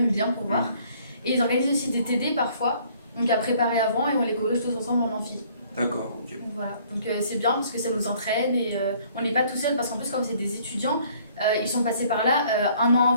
bien pour voir. Et ils organisent aussi des TD parfois, donc à préparer avant et on les corrige tous ensemble en amphi. D'accord, ok. Voilà, donc c'est bien parce que ça nous entraîne et on n'est pas tout seul parce qu'en plus, comme c'est des étudiants, ils sont passés par là un an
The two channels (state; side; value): inverted; both; correlation -0.59